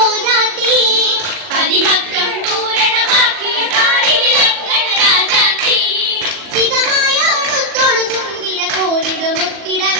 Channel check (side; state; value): left; late; 40 ms